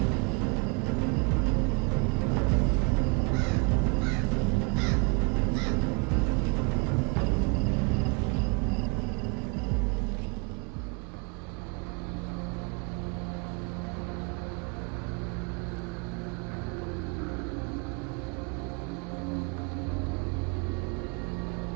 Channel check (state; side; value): quieter; left; 32.3 dB